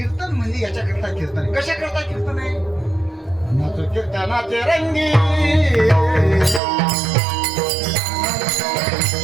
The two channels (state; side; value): drops out; left; at 6.6 s